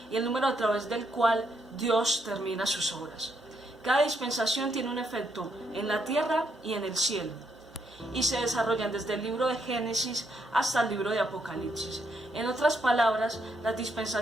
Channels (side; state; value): both; normal; correlation 0.76